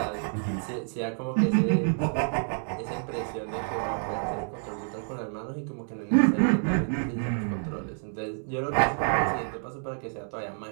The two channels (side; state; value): left; silent; 59 dB below the other